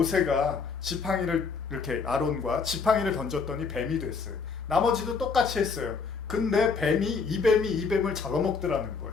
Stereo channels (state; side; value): quieter; right; 5.1 dB